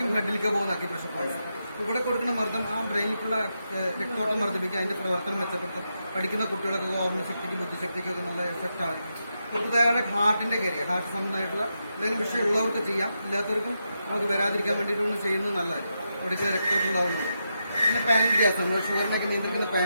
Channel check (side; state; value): both; inverted; correlation -0.85